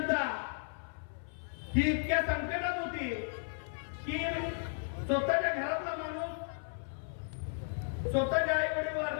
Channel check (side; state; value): right; silent; 55 dB below the other